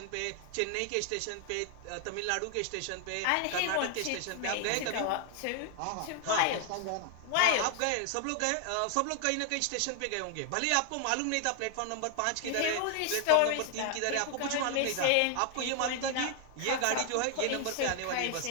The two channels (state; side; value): different; both; correlation 0.00